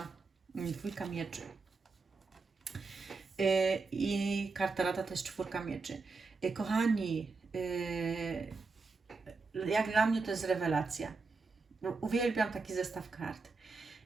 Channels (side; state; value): left; quieter; 4.2 dB